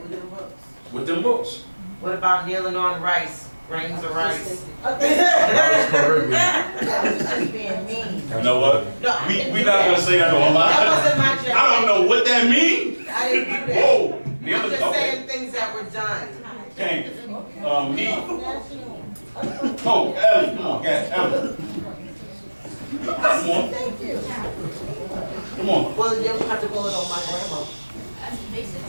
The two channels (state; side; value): inverted; both; correlation -1.00